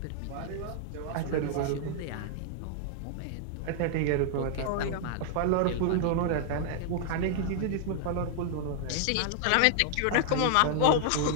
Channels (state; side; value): different; both; correlation -0.01